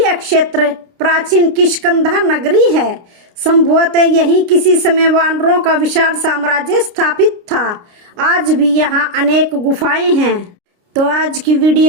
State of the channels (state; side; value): late; left; 29 ms